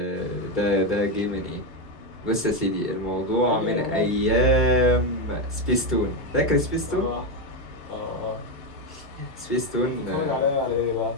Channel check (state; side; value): late; right; 2.3 ms